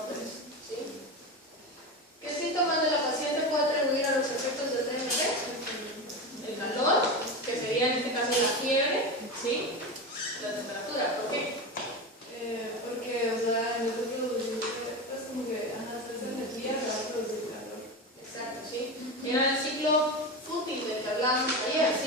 ¿sí? ¿Qué síntomas de la paciente puede atribuir a los efectos del DNT? El calor, que sería en este caso la fiebre, ¿sí? La temperatura, ¿por qué? Porque, o sea, en vez de producir, pues como que, ajá, esa energía se va a producir calor. Exacto, ¿sí? Era el ciclo fútil del que hablábamos ayer,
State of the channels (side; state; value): both; normal; correlation 0.21